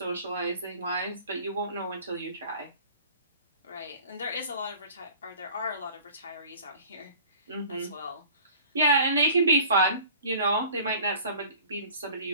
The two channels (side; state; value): both; inverted; correlation -0.46